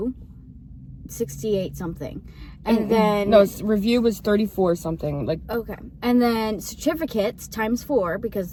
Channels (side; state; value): both; identical; correlation 1.00